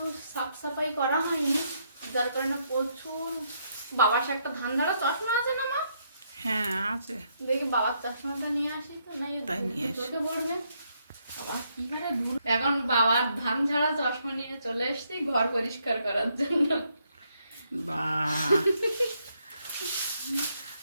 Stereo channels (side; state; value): both; inverted; correlation -0.75